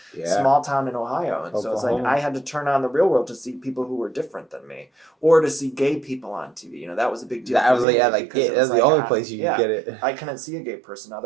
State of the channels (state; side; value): drops out; left; at 7.9 s